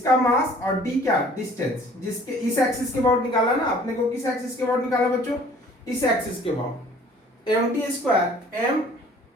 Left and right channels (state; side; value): normal; both; correlation 0.52